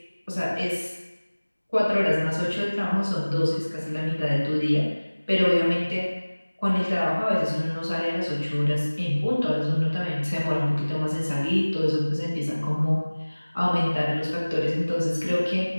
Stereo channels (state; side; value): inverted; both; correlation -1.00